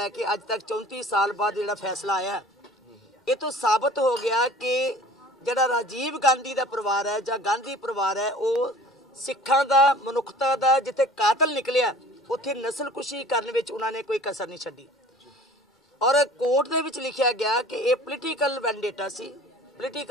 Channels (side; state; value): both; normal; correlation 0.46